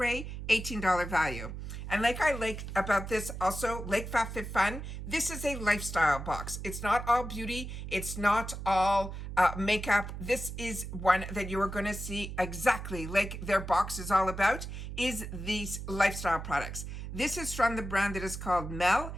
$18 value. And like I like about this also, like FabFitFun, this is a lifestyle box. It's not all beauty. It's not all makeup. This is one that you are going to see exactly like their box is all about, is these lifestyle products. This is from the brand that is called Mele,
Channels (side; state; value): right; noise; hum, 8 dB below the sound